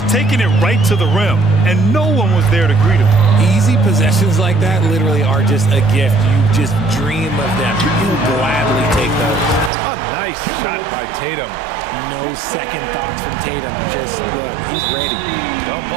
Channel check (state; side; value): drops out; left; at 9.7 s